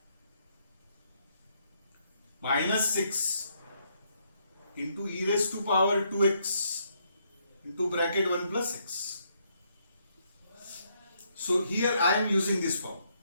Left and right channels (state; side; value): inverted; both; correlation -0.73